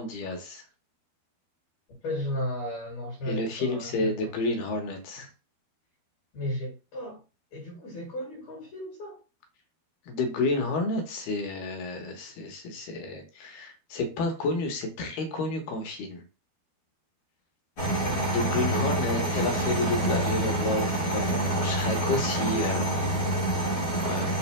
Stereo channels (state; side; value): late; right; 12 ms